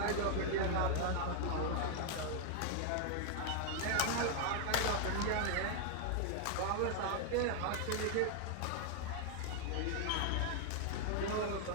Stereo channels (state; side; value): different; both; correlation 0.00